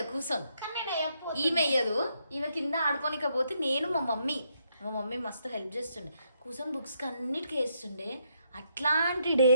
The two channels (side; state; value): both; inverted; correlation -0.76